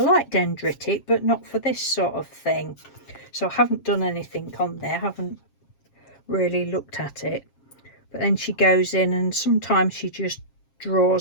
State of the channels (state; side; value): late; right; 7.4 ms